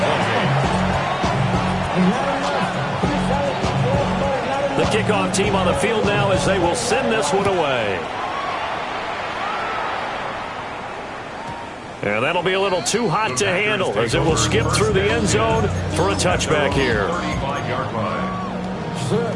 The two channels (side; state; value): both; identical; correlation 1.00